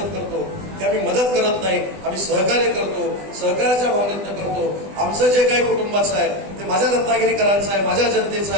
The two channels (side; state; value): left; late; 20 ms